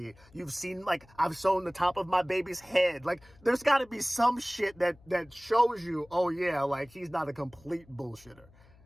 You've seen, like, I've shown the top of my baby's head. Like, there's got to be some shit that shows you, oh yeah, like, he's not a complete bullshitter.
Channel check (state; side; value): noise; left; hum, 26 dB below the sound